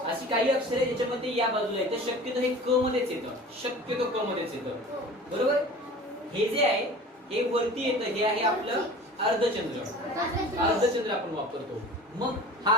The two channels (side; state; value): both; normal; correlation 0.40